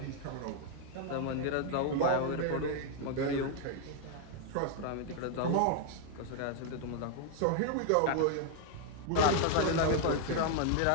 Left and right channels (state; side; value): different; both; correlation 0.00